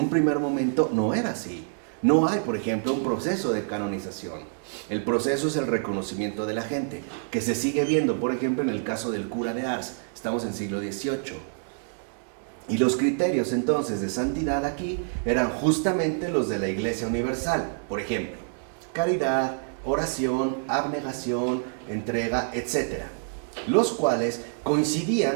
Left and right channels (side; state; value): left; silent; digital silence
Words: primer momento no era así. No hay, por ejemplo, un proceso de canonización. El proceso es el reconocimiento de la gente, que se sigue viendo, por ejemplo, en el caso del cura de Ars. Estamos en siglo XVIII. Y los criterios entonces de santidad aquí eran justamente los de la Iglesia Universal. Por ejemplo, caridad, oración, abnegación, entrega, etc. Los cuales